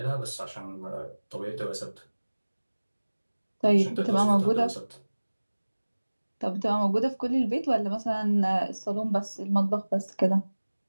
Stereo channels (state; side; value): inverted; both; correlation -1.00